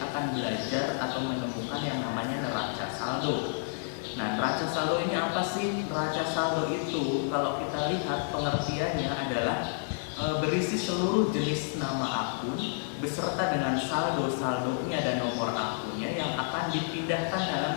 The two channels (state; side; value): silent; right; digital silence